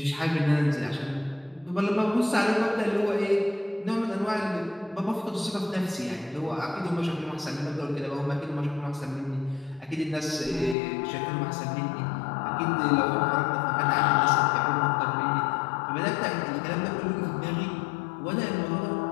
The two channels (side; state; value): right; drops out; at 10.8 s